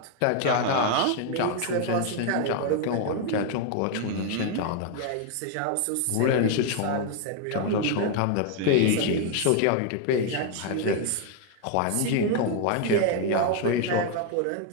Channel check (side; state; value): both; different; correlation 0.01